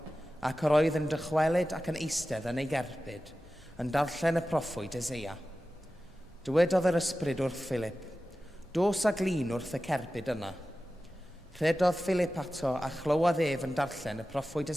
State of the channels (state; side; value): normal; both; correlation 0.94